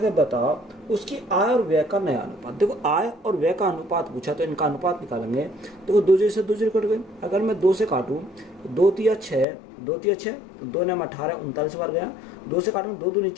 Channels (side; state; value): right; drops out; at 9.5 s